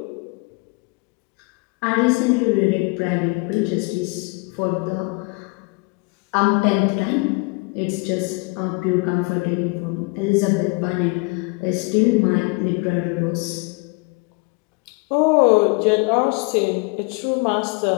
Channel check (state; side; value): quieter; right; 29.4 dB